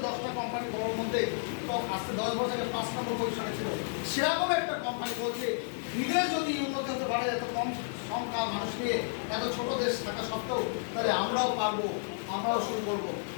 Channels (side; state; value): right; silent; digital silence